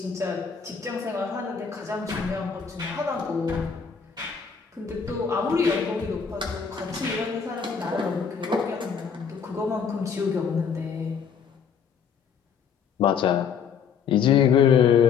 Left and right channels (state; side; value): quieter; right; 6.7 dB